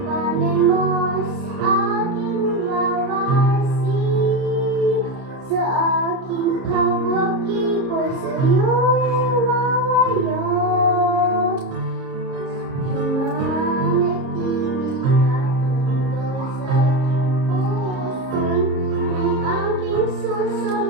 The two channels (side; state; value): left; late; 30 ms